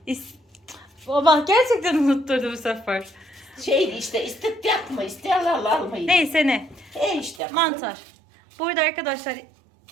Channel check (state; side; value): drops out; left; at 7.4 s